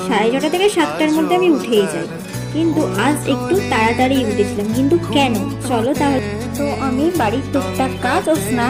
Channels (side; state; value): both; identical; correlation 1.00